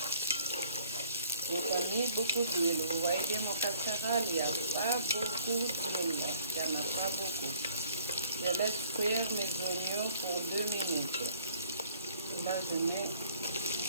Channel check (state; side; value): inverted; both; correlation -0.58